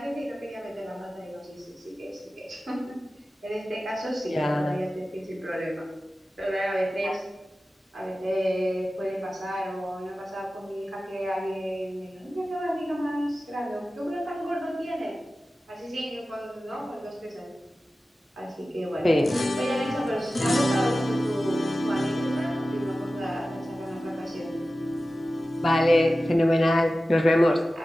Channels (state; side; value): normal; both; correlation 0.95